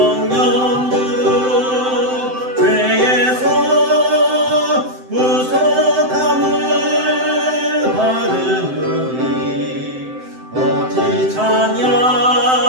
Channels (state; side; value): late; left; 7.8 ms